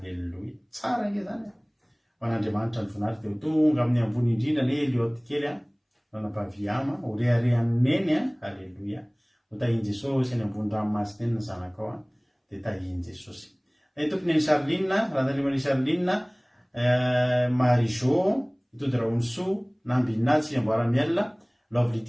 Tsara nge zany ho an'Andriamanitra ny voninahitra dia ho tonga amin'ny ambony indrindra ny Eliot kely ranam-paviama ho reharehan'ny neny. Halleloia. ho tahiny Jesosy any ambony ranomasina eny ny zanaka ao dia tahiny Jesosy. Tompony ny Charline ranandrimany Charline Marijo itody Raonso Nambina Tsiamboaramiel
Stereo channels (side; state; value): both; identical; correlation 1.00